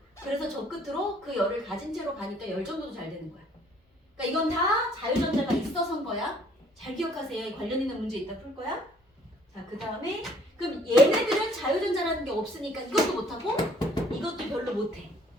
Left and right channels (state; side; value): normal; both; correlation 0.60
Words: 그래서 저 끝으로 그 열을 가진 채로 가니까 열전도도 잘 되는 거야. 그러니까 이건 다 자유전자가 있어서인 거야. 잘 기억하세요. 관련 있는 문제 이따 풀 거야. 자, 그 다음에 그럼 얘네들은 자유전자라는 게 없으니까 이것도 못하고 이것도 별로 못해.